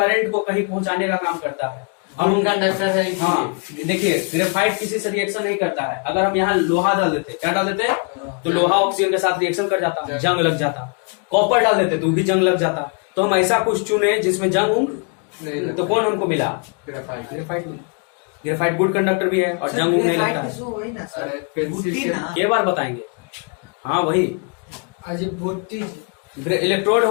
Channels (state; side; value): quieter; right; 37.7 dB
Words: को कहीं पहुंचाने का काम करता है। हम उनका कंडक्टर है। हाँ, देखिए ग्रेफाइट किसी से रिएक्शन नहीं करता है। अगर हम यहाँ लोहा डाल देते, क्या डाल देते? तो लोहा ऑक्सीजन के साथ रिएक्शन कर जाता, जंग लग जाता। कॉपर डाल देते तो भी जंग लग जाता। तो हम ऐसा कुछ चुने जिसमें जंग तो कौन हमको मिला? ग्रेफाइट। ग्रेफाइट गुड कंडक्टर भी है और जंग नहीं लगता है। के बार बताएंगे? हाँ वही इलेक्ट्रोड